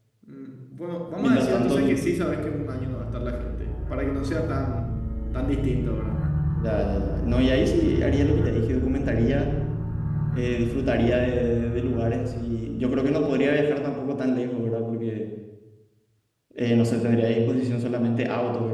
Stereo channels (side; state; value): both; identical; correlation 1.00